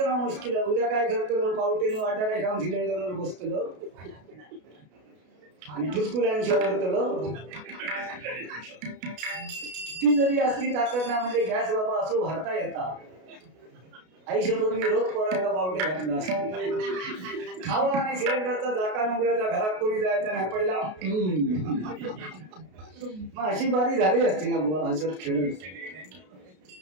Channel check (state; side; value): late; left; 33 ms